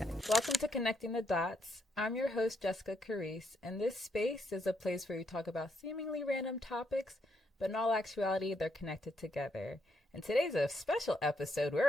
Welcome to Connecting the Dots. I'm your host, Jessica Carice, and this space is a place where we talk about seemingly random topics, but in all actuality, they're connected together. And today's a special episode.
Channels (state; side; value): normal; both; correlation 0.77